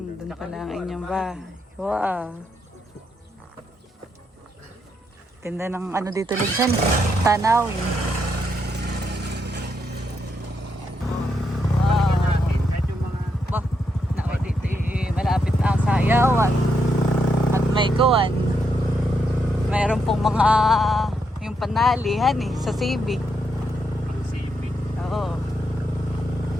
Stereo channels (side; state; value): both; normal; correlation 0.80